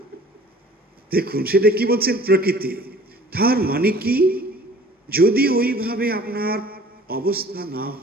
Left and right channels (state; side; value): normal; both; correlation 0.49